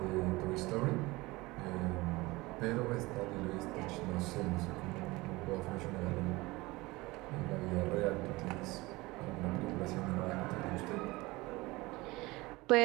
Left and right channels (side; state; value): left; quieter; 21.6 dB